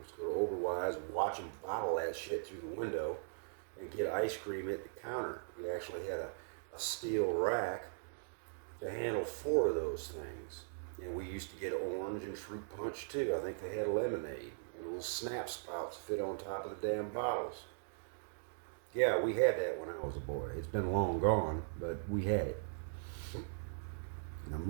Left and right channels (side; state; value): left; silent; digital silence